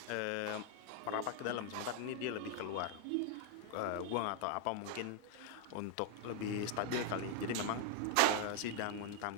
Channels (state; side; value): different; both; correlation 0.00